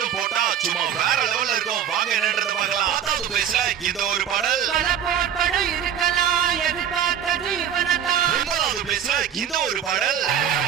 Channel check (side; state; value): left; quieter; 9.1 dB